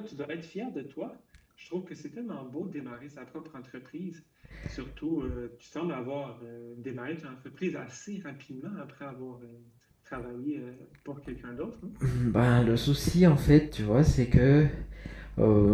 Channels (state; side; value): identical; both; correlation 1.00